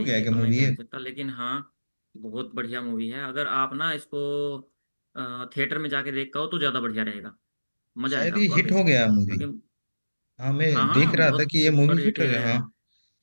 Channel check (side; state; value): both; inverted; correlation -1.00